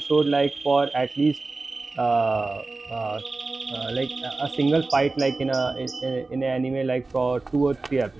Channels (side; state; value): left; quieter; 3.5 dB